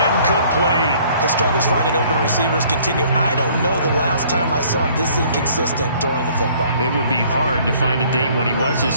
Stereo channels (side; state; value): both; inverted; correlation -0.58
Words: His struggles finding open receivers continue. I don't know the last time I saw him this inconsistent throwing the football. It would be hard to find a date when he was